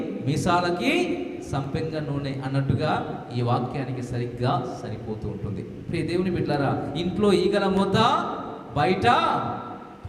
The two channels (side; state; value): both; identical; correlation 1.00